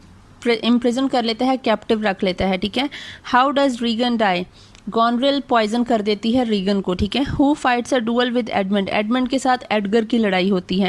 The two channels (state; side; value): identical; both; correlation 1.00